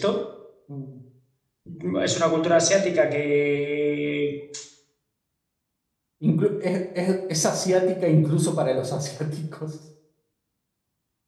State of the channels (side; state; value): both; identical; correlation 1.00